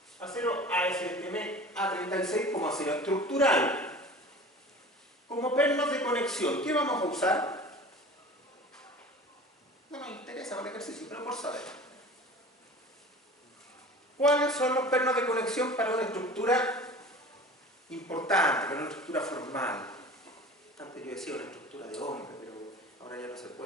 Acero ASTM A36 como acero estructural. Como pernos de conexión, ¿qué vamos a usar? No nos interesa para el ejercicio, pero por saber. ¿Cuáles son los pernos de conexión para una estructura importante, para una estructura formal? Antes yo decía una estructura de hombre, pero ahora ya no se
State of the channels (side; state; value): both; normal; correlation 0.40